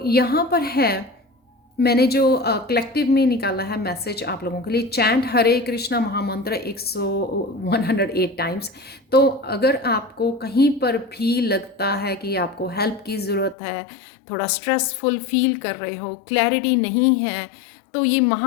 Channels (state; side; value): drops out; right; at 13.6 s